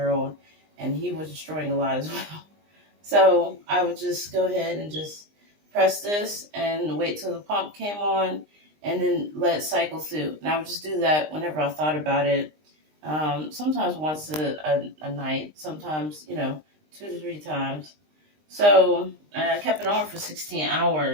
and he was destroying a lot as well. So I would just go ahead and just press this and wait till the pump came on and then let it cycle through. And I would just do that whenever I thought about it. Sometimes once a night, sometimes, 2 to 3 times. So I kept it on for 16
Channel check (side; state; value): left; late; 20 ms